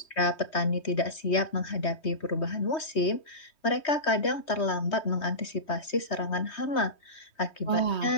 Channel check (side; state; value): right; late; 3.2 ms